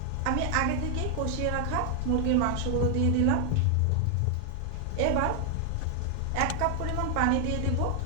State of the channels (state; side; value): different; both; correlation 0.00